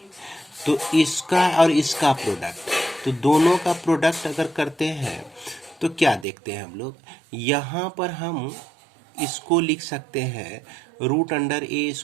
तो इसका और इसका प्रोडक्ट, तो दोनों का प्रोडक्ट अगर करते हैं तो क्या देखते हैं हम लोग, यहाँ पर हम इसको लिख सकते हैं root under A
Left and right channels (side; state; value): left; drops out; at 6.2 s